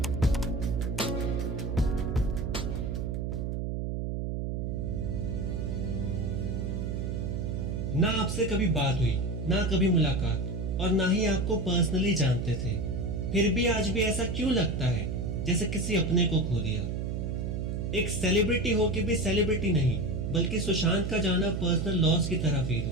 ना आपसे कभी बात हुई, ना कभी मुलाकात, और ना ही आपको पर्सनली जानते थे, फिर भी आज भी ऐसा क्यों लगता है जैसे किसी अपने को खो दिया। एक सेलिब्रिटी हो के भी सेलिब्रिटी नहीं, बल्कि सुशांत का जाना पर्सनल लॉस की तरह फील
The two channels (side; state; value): right; noise; hum, 2 dB below the sound